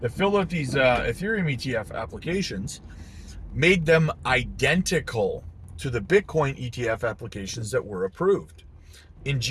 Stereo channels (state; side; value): identical; both; correlation 1.00